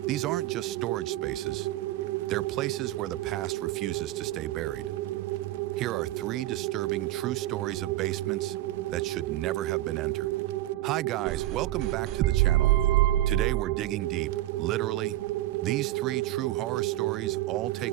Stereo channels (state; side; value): quieter; left; 15.3 dB